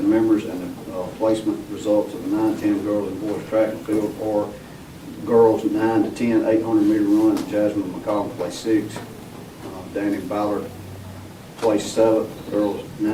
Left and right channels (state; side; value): identical; both; correlation 1.00